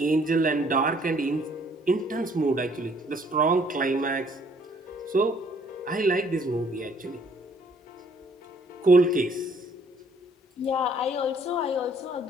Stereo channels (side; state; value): both; normal; correlation 0.62